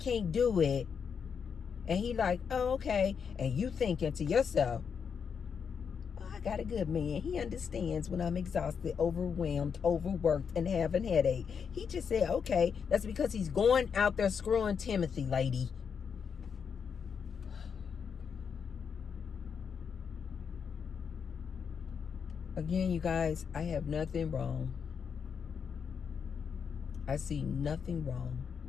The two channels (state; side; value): quieter; right; 6.6 dB